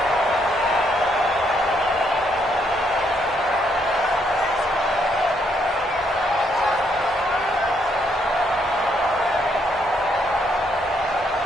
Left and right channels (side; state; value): both; normal; correlation 0.73